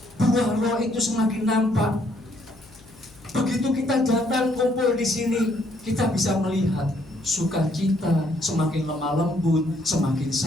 buah roh itu semakin nampak. Begitu kita datang kumpul di sini, kita bisa melihat sukacita semakin lemah lembut, semakin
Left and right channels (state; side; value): noise; left; hum, 25 dB below the sound